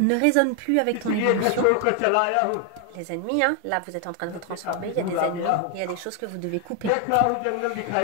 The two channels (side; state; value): both; different; correlation 0.01